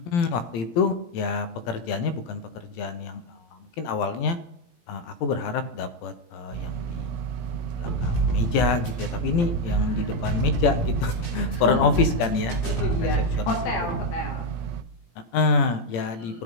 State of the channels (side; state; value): right; late; 18 ms